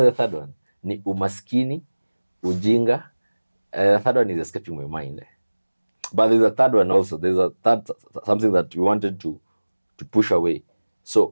the third one? Ni umaskini, ujinga. The third one is escaping my mind. But there's a third one also. There's a third something that we wanted to push away.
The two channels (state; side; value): inverted; both; correlation -1.00